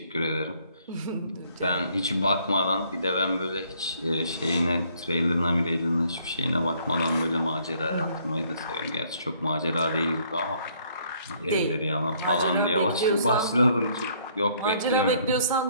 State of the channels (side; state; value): both; inverted; correlation -0.64